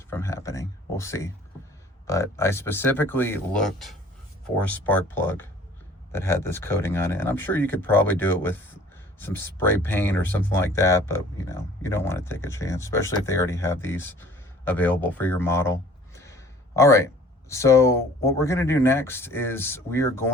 from happening. We'll see. But I specifically looked for a spark plug that had this coating on it, and I'm sure you could probably do it with some spray paint or something like that, but you know, you don't want to take a chance, especially if they already have these available for your model. All right, so what we're going to do next is we are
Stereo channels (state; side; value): normal; both; correlation 0.51